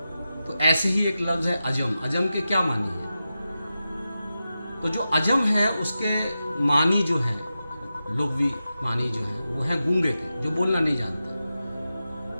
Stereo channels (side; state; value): both; inverted; correlation -0.91